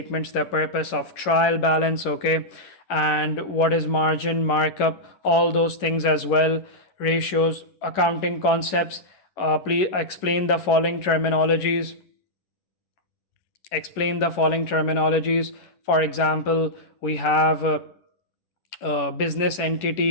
the purpose of trial balance. Okay, and what is margin, markup, all those things as well. Ratios, accounting concepts. Please explain the following terminologies. For example, we have business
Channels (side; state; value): right; late; 11 ms